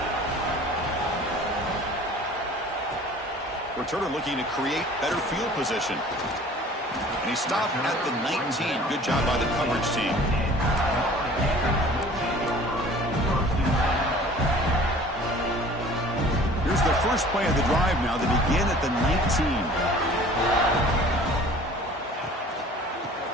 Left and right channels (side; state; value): both; normal; correlation 0.48